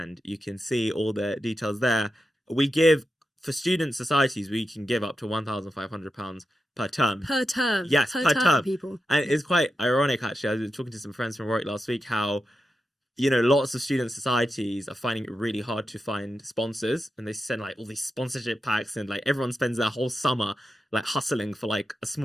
you can see all the details there. We give, for student societies, we can give up to £1,500 per term. Per term? Yes, per term. People. And it's quite ironic, actually. I was talking to some friends from Warwick last week, how, lots of student societies are finding it really hard to find sponsors, and they send like all these sponsorship packs, and like everyone spends their whole summer like hustling for like a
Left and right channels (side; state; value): both; normal; correlation 0.89